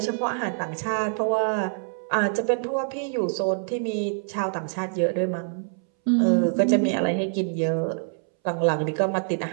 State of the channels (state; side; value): silent; left; 62 dB below the other